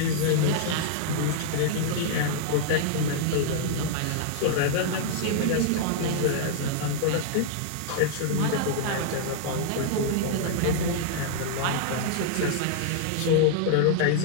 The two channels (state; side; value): different; both; correlation -0.01